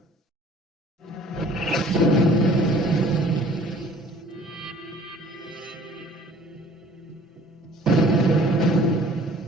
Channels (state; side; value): normal; both; correlation 0.52